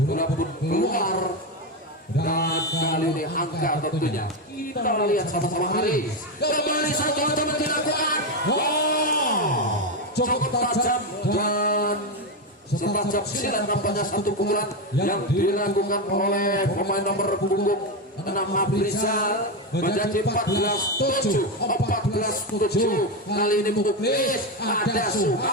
bola pun keluar dan kali ini angka tentunya kita lihat sama-sama Haris. Kembali satu teman dilakukan. Cukup tajam dan setajam silat nampaknya satu pukulan yang dilakukan oleh pemain nomor punggung 6 Rizal menjadi 14-7. Kali ini Muklis, ada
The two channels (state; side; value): normal; both; correlation 0.10